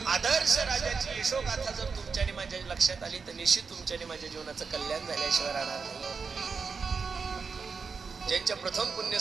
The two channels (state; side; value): quieter; left; 5.2 dB